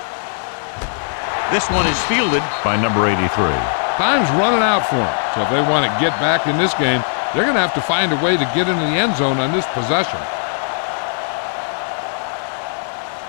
This one is fielded by number 83. Time's running out for them. So if they want to get back in this game, they're going to have to find a way to get into the end zone on this possession.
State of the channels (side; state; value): right; silent; 67 dB below the other